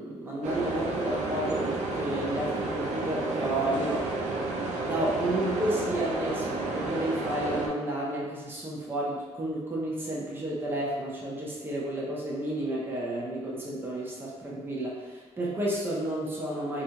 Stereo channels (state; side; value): normal; both; correlation 0.59